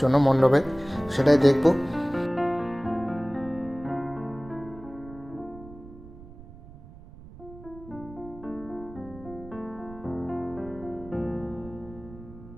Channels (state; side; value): noise; right; rumble, 18 dB below the sound